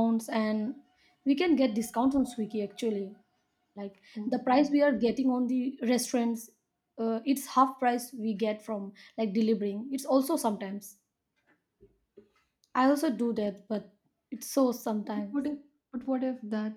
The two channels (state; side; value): identical; both; correlation 1.00